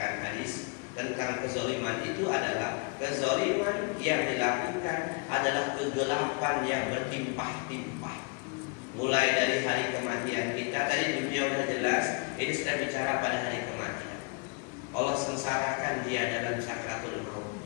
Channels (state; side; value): quieter; right; 32.8 dB